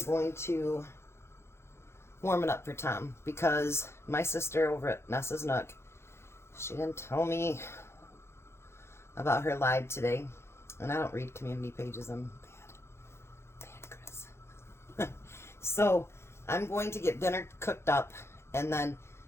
going to warm it up for Tom, because my sister over at Nessa's Nook, she didn't tell me about her live today, and I don't read community pages. I'm bad Chris. So I'm going to get dinner cooked up, and then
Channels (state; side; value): late; right; 0.12 ms